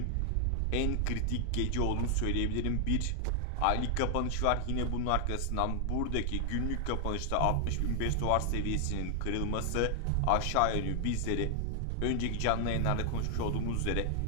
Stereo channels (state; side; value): different; both; correlation 0.00